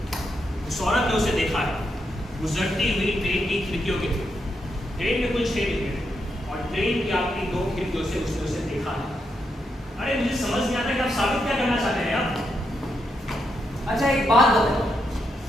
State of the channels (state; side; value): normal; both; correlation 0.82